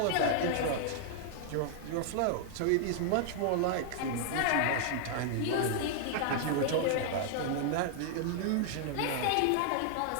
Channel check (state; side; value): different; both; correlation -0.01